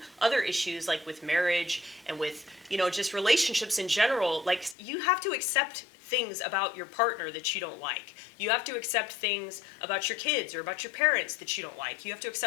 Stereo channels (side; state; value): right; drops out; at 4.8 s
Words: other issues, like with marriage and with, you know, just relationships in general. Like, you have to accept things about your partner that you don't like. You have to accept things about your kids or about your parents that you don't like. You have to